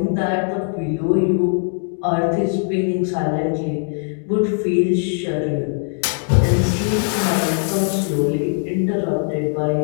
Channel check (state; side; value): silent; right; 66 dB below the other